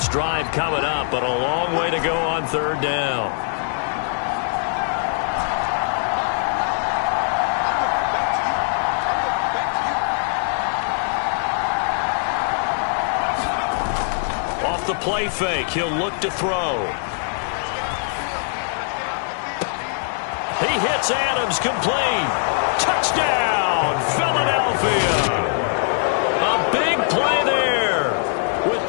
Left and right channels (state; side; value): silent; right; digital silence